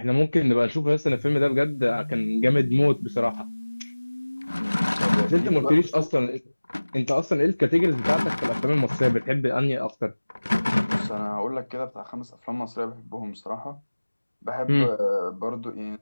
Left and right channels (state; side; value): inverted; both; correlation -1.00